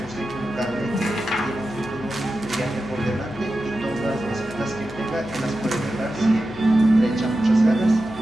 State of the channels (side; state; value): left; noise; hum, 15 dB below the sound